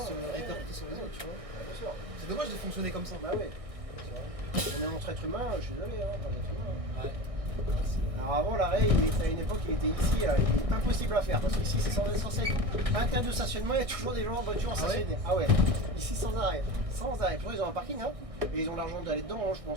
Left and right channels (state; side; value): late; left; 1.6 ms